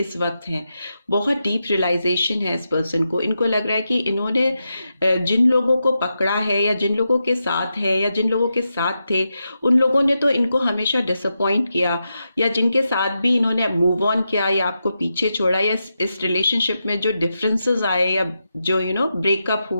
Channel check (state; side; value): inverted; both; correlation -0.87